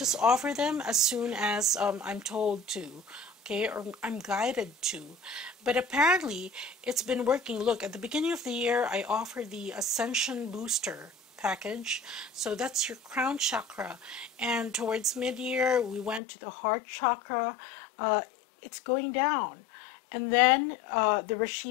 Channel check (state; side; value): drops out; right; at 16.2 s